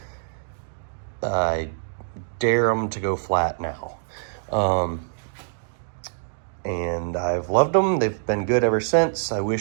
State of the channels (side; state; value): left; silent; digital silence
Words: I dare them to go flat now. And I've loved them. They've been good ever since. I